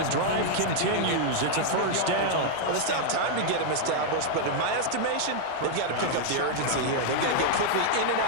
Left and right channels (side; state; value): both; different; correlation -0.01